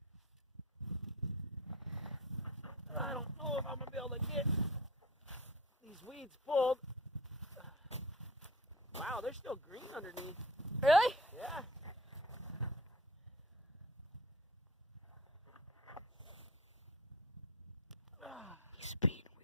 I don't know if I'm going to be able to get these weeds pulled. Wow, they're still green underneath. Really? Yeah. He's being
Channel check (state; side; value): normal; both; correlation 0.36